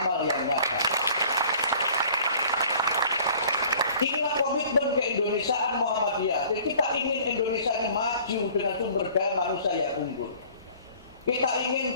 yang nyata. Inilah komitmen keindonesiaan Muhammadiyah. Jadi kita ingin Indonesia ini maju dengan sumber daya manusia yang unggul. Kita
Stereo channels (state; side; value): inverted; both; correlation -0.51